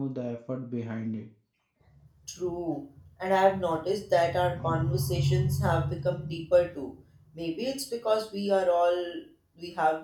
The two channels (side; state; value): both; identical; correlation 1.00